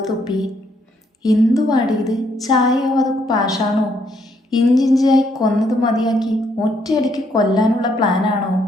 തുപ്പി. എന്തുവാടി ഇത്? ചായയോ അത് പാഷാണോ? ഇഞ്ചിഞ്ചായി കൊന്നത് മതിയാക്കി ഒറ്റയടിക്ക് കൊല്ലാനുള്ള പ്ലാനാണോ?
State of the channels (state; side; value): normal; both; correlation 0.71